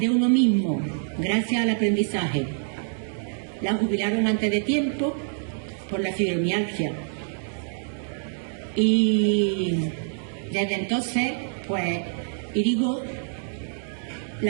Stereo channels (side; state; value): left; silent; digital silence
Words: uno mismo gracias al aprendizaje. La jubilaron antes de tiempo por la fibromialgia y desde entonces, pues,